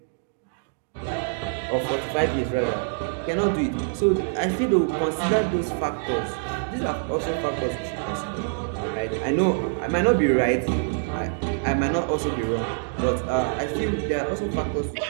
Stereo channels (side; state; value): left; silent; digital silence